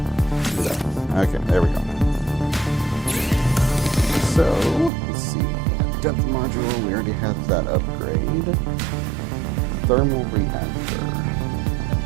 Do that. Okay, there we go. So, let's see. Depth module, we already have that upgrade. Thermal reactor.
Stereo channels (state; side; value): drops out; left; at 4.9 s